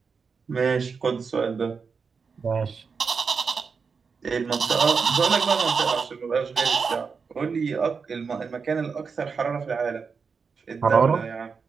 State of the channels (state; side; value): quieter; left; 5.4 dB